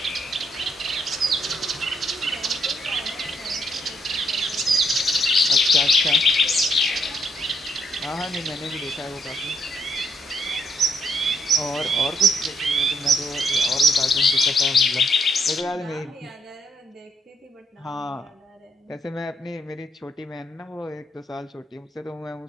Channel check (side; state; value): both; normal; correlation 0.74